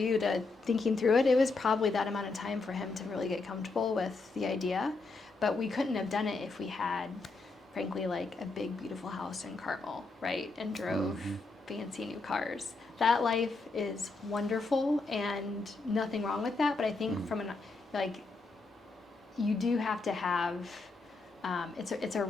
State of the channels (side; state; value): right; quieter; 3.7 dB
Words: to thinking through it. It was probably that amount of time for him to really get comfortable with the idea, but we couldn't have done it if we had, frankly, like a big, beautiful house in Carmel, right? And drove fancy new cars. That life is wonderful and nothing wrong with that. But I think you do have to have, it's a